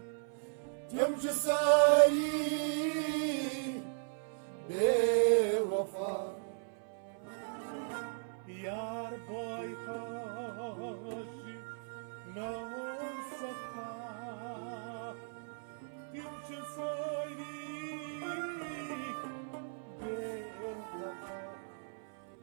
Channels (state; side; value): silent; left; 53 dB below the other